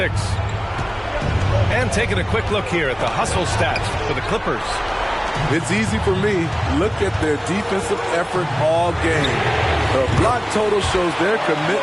And taking a quick look here at the hustle stats for the Clippers. It's easy for me. Look at their defensive effort all game. The block total shows their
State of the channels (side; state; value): both; identical; correlation 1.00